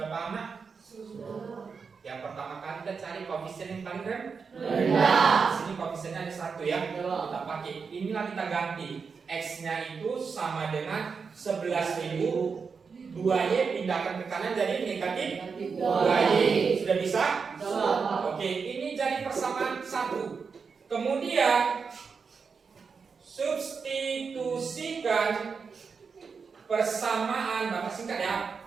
paham nak? Yang pertama kali kita cari koefisien yang paling rendah. Sini koefisiennya ada 1 ya. Kita pakai. Inilah kita ganti. X-nya itu sama dengan 11.000. 2Y pindahkan ke kanan jadi negatif 2Y. Sudah bisa? Oke, ini jadi persamaan 1. Kemudian substitusikan persamaan, Bapak singkat ya.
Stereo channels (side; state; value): left; quieter; 5.4 dB